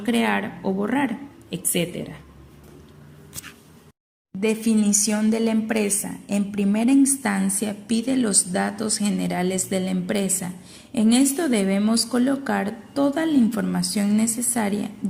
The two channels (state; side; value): identical; both; correlation 1.00